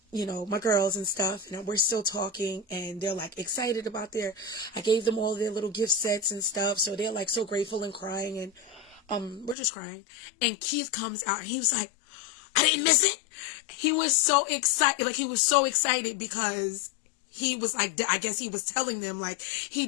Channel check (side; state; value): right; drops out; at 9.6 s